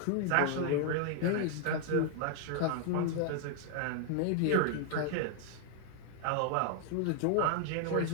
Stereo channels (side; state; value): both; different; correlation 0.00